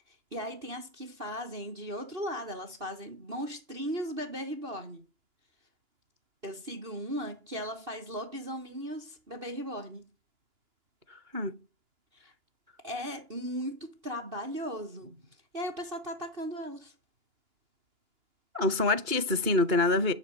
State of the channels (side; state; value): left; late; 2.9 ms